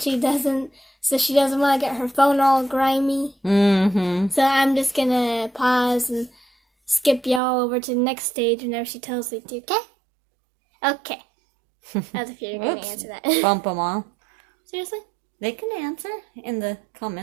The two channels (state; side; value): drops out; left; at 7.4 s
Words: doesn't, so she doesn't want to get her phone all grimy. Mm-hmm. So I'm just going to pause and skip y'all over to the next stage whenever she tells me to, okay? Okay. As if you're going to answer that. Bump them all. Seriously? They can answer in the